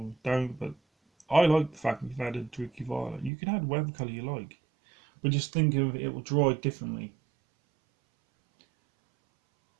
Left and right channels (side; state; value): left; drops out; at 3.3 s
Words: don't, but I like the fact that you've added Druky Violet. You can add whatever colour you like, but just think of it will dry differently.